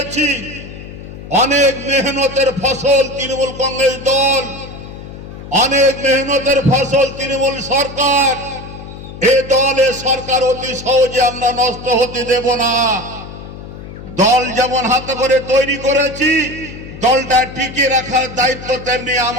অনেক মেহনতের ফসল তৃণমূল কংগ্রেস দল, অনেক মেহনতের ফসল তৃণমূল সরকার। এ দল এ সরকার অতি সহজে আমরা নষ্ট হতে দেব না। দল যেমন হাতে করে তৈরি করেছি, দলটা টিকিয়ে রাখার দায়িত্ব তেমনি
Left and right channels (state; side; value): noise; left; hum, 13 dB below the sound